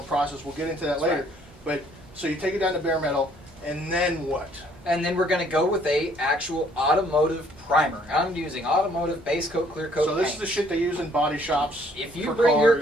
process. We'll get into that That's later. right. But so you take it down to bare metal, and then what? And then we're going to go with a actual automotive primer. I'm using automotive base coat, clear coat So this paint. is the shit they use in body shops. If you for bring your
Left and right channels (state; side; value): normal; both; correlation 0.63